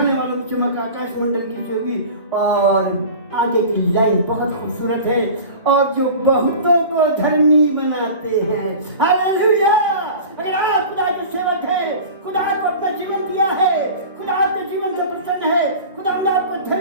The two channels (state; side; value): inverted; both; correlation -0.37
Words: वालों की चमक आकाश मंडल की सी होगी। और आगे की लाइन बहुत खूबसूरत है, और जो बहुतों को धर्मी बनाते हैं। हालेलुया! अगर आप खुदा के सेवक हैं, खुदा को अपना जीवन दिया है, खुदा आपके जीवन से प्रसन्न है, खुदा ने आपको